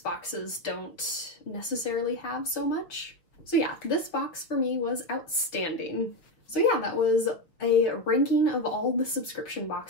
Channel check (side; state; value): right; late; 6.1 ms